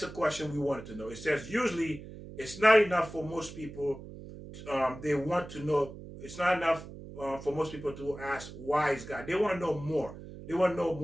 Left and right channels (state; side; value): noise; right; hum, 13 dB below the sound